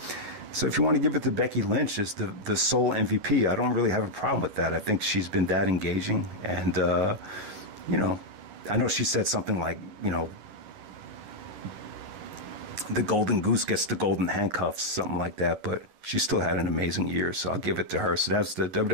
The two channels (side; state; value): left; late; 10 ms